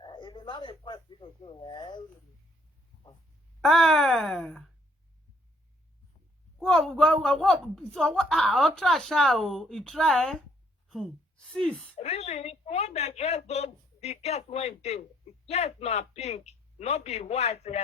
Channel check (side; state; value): both; normal; correlation 0.66